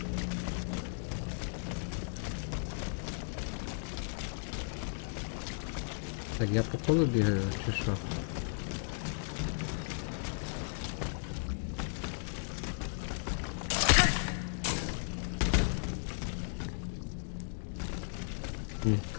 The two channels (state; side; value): silent; right; digital silence